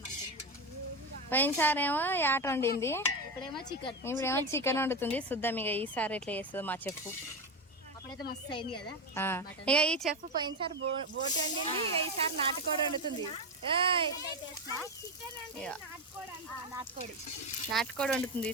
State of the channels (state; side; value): normal; both; correlation 0.15